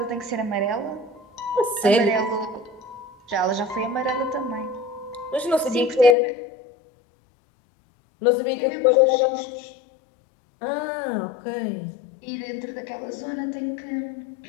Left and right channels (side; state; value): right; drops out; at 6.2 s